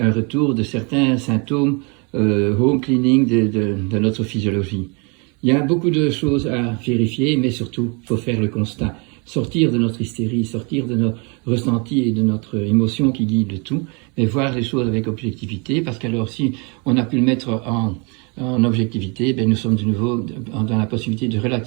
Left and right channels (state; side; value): quieter; left; 32.4 dB